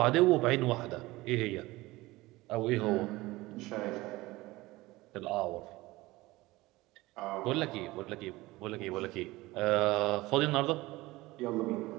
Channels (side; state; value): left; quieter; 19.7 dB